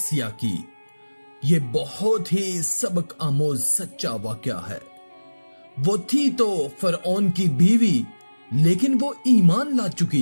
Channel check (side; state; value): both; inverted; correlation -1.00